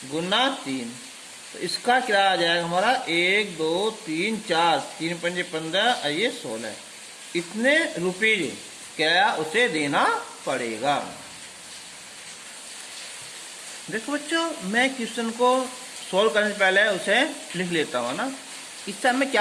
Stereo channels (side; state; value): both; identical; correlation 1.00